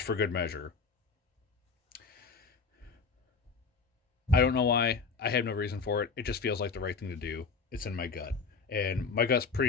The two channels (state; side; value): quieter; right; 5.0 dB